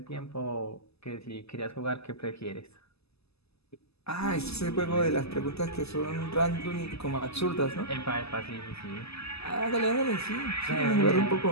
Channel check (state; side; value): late; right; 0.79 ms